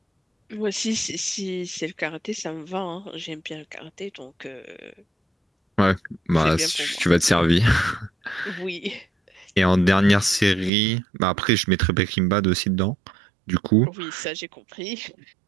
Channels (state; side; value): drops out; left; at 10.7 s